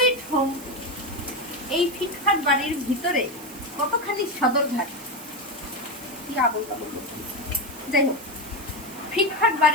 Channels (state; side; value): noise; right; hiss, 17 dB below the sound